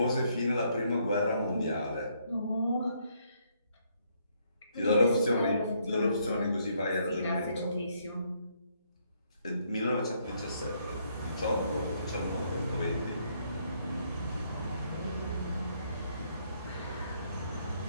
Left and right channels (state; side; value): inverted; both; correlation -0.71